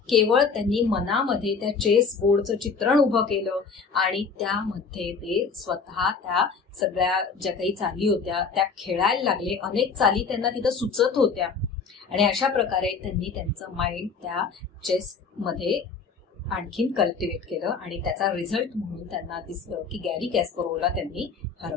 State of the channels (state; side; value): quieter; right; 5.2 dB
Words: केवळ त्यांनी मनामध्ये त्या चेस बोर्डचं चित्रण उभं केलं आणि त्यामध्ये ते स्वतः त्या सगळ्या ज्या काही चाली होत्या त्या खेळायला लागले. अनेक चाली त्यांना तिथं सुचत होत्या आणि अशा प्रकारे त्यांनी त्यांचं माइंड त्या चेस मध्ये आणखीन कल्टिवेट केलं आणि त्याचा रिझल्ट म्हणून त्यांना दिसलं की गॅरी कॅस्परोव्हला त्यांनी